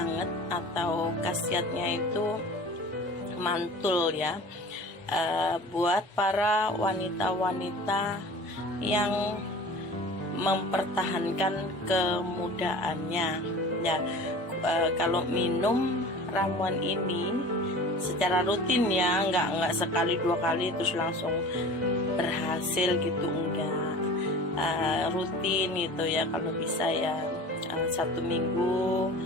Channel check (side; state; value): both; normal; correlation 0.40